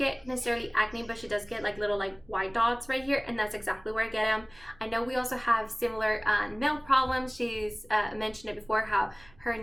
necessarily acne, but she does get like little like white dots right here, and that's exactly where I get them. I know we also have similar nail problems. She's mentioned it before how her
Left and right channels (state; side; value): noise; right; rumble, 26 dB below the sound